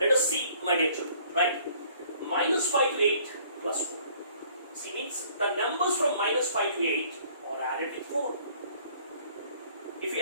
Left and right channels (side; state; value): both; inverted; correlation -0.58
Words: us see, my dear children, right? Minus 5 to 8 plus 4. See, means the numbers from minus 5 to 8 are added with 4. If you